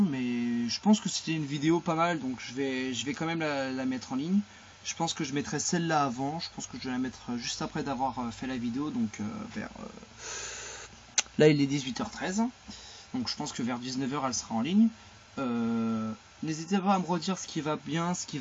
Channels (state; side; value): identical; both; correlation 1.00